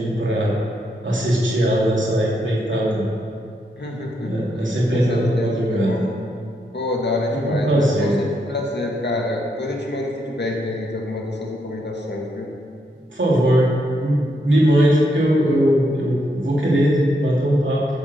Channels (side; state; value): both; normal; correlation 0.79